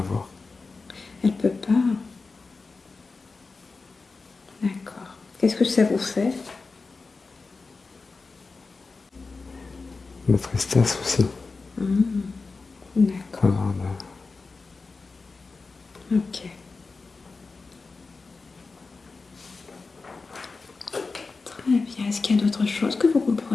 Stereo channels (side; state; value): right; quieter; 4.1 dB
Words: Elle peut pas. D'accord. Qu'est-ce que ça vous fait? La tristesse aussi. D'accord. Alors, Ok. Très bien. Est-ce qu'il y a d'autres choses que vous